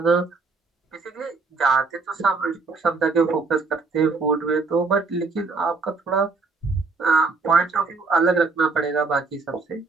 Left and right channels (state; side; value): quieter; left; 4.2 dB